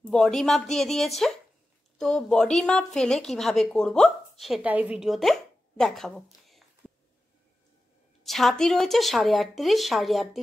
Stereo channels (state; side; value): normal; both; correlation 0.93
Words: বডি মাপ দিয়ে দিয়েছে, তো বডি মাপ ফেলে কিভাবে করব সেটা এই ভিডিওতে দেখাবো। ছাতি রয়েছে 38.5,